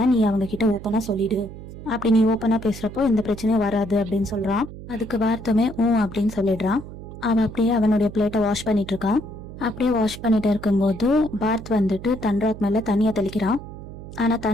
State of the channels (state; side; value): noise; right; hum, 13 dB below the sound